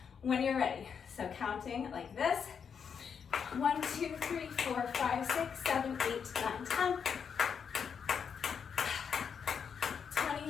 when you're ready. So counting like this: 1, 2, 3, 4, 5, 6, 7, 8, 9, 10,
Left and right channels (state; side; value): quieter; right; 6.8 dB